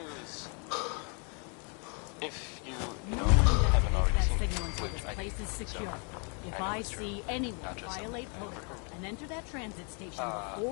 If you haven't already seen it, which I place is secure. So, If I see anyone violate protocol and enter that transit station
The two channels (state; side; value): quieter; right; 37.4 dB